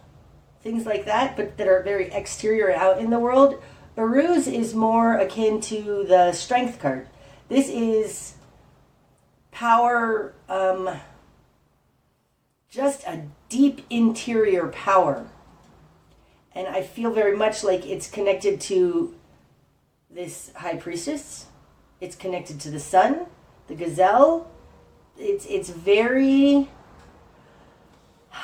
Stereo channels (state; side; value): identical; both; correlation 1.00